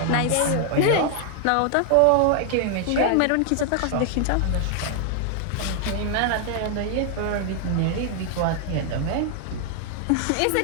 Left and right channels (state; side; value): different; both; correlation 0.00